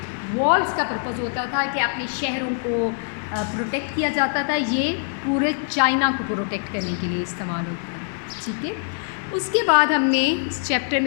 वॉल्स का पर्पज़ होता था कि अपने शहरों को प्रोटेक्ट किया जाता था, ये पूरे चाइना को प्रोटेक्ट करने के लिए इस्तेमाल होता है। ठीक है, उसके बाद हमने इस चैप्टर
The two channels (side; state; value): right; silent; digital silence